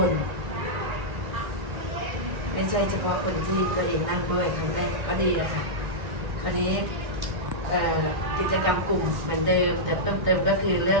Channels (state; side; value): late; left; 1.1 ms